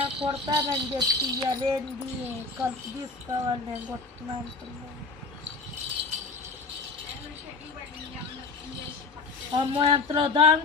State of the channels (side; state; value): right; quieter; 4.1 dB